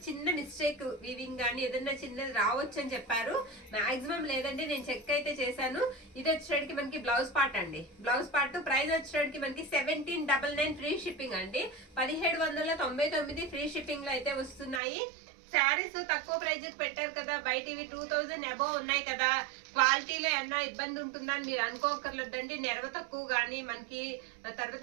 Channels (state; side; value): drops out; left; at 14.8 s